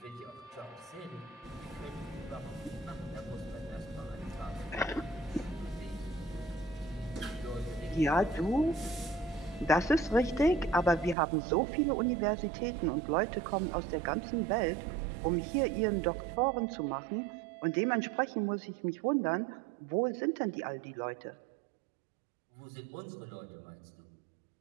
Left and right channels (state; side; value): drops out; left; at 11.2 s